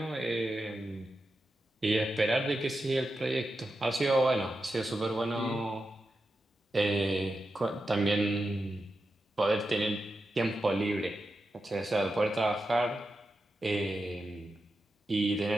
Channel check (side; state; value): both; normal; correlation 0.89